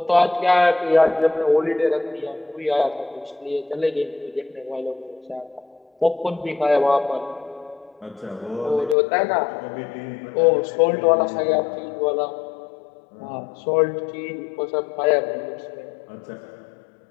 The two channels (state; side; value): drops out; right; at 9.0 s